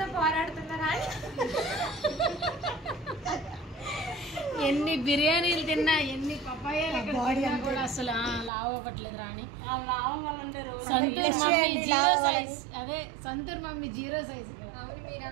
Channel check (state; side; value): drops out; left; at 8.5 s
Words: పోరాడుతున్నారా? ఎన్ని బిర్యానీలు తిన్నా, ఎన్ని పపాయాలు కూడా అసలు లావు అవ్వట్లేదు రాణి. Santoor mummy 0 size. అదే సంతూర్ మమ్మీ 0 సైజ్. అవును,